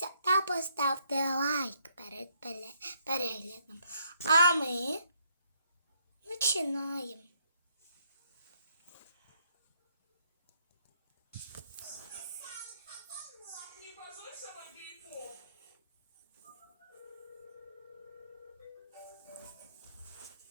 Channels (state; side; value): inverted; both; correlation -0.71